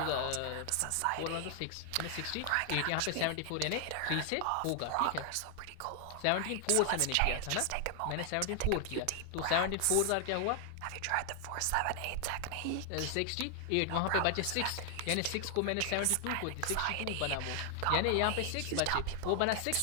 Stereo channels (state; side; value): different; both; correlation 0.00